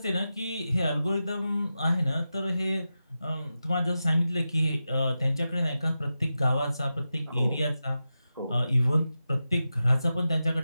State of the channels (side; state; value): both; inverted; correlation -0.92